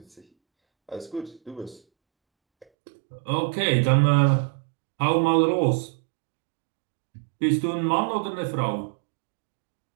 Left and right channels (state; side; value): drops out; left; at 2.7 s